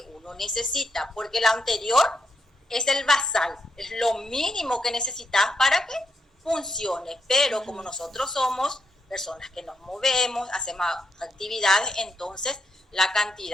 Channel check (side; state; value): both; normal; correlation 0.79